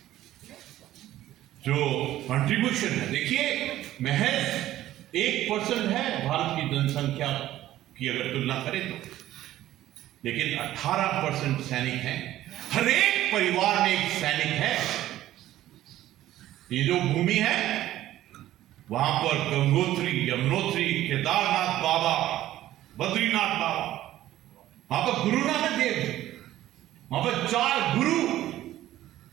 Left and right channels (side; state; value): left; quieter; 14.0 dB